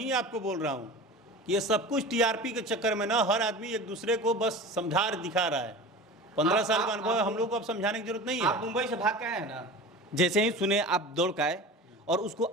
आपको बोल रहा हूँ कि ये सब कुछ टीआरपी के चक्कर में ना, हर आदमी एक दूसरे को बस समझा दिखा रहा है। 15 साल का अनुभव है, हम लोग को अब समझाने की जरूरत नहीं है। आप मुंबई से भाग के आए हैं ना, जैसे ही सुने आप दौड़ के आए और उसको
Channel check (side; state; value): both; normal; correlation 0.34